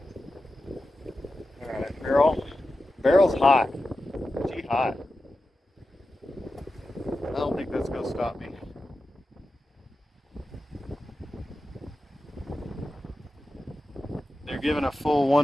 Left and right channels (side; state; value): both; normal; correlation 0.92